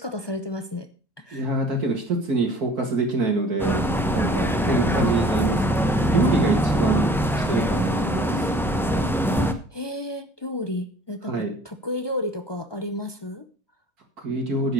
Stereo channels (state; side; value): normal; both; correlation 0.49